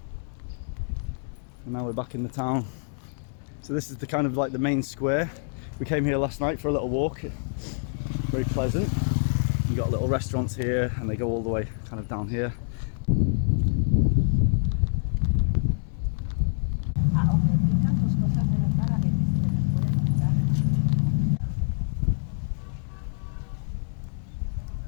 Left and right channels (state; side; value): silent; right; digital silence